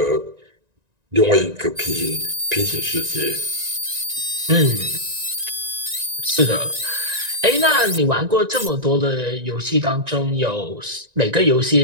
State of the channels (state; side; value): late; left; 1.9 ms